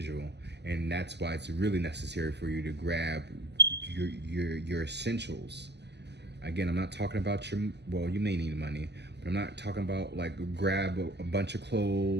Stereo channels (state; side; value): late; left; 0.50 ms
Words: And that's why it's really necessary for you to grab your essentials, Again, I'm not talking about well, you may need money, but I'm not talking about like grab a bunch of